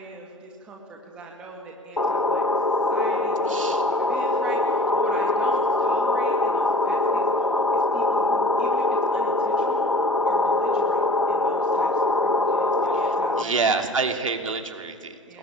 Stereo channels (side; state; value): both; normal; correlation 0.44